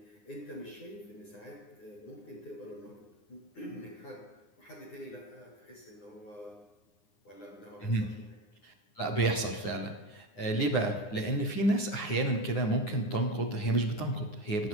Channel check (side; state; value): right; late; 9.7 ms